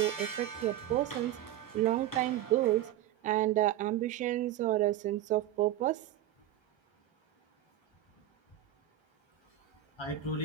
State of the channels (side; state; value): left; quieter; 12.5 dB